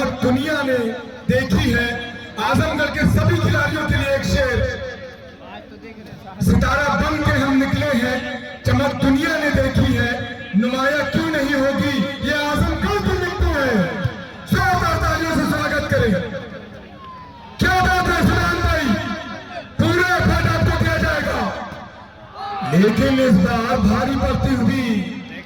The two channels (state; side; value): identical; both; correlation 1.00